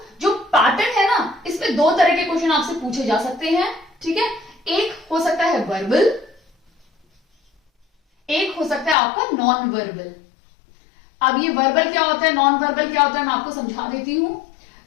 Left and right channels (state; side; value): drops out; right; at 9.0 s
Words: जो पैटर्न है ना, इसमें दो तरह के क्वेश्चन आपसे पूछे जा सकते हैं। ठीक है, एक हो सकता है वर्बल, एक हो सकता है आपका नॉन वर्बल। अब ये वर्बल क्या होता है, नॉन वर्बल क्या होता है, मैं आपको समझा देती हूं।